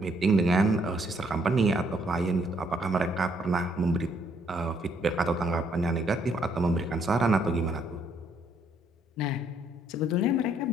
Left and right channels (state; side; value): normal; both; correlation 0.69